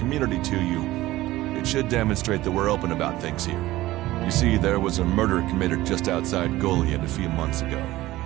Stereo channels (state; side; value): quieter; left; 16.9 dB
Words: to you, it should demonstrate that we're open about things here. You see, there was a murder committed just outside Goliath a few months ago.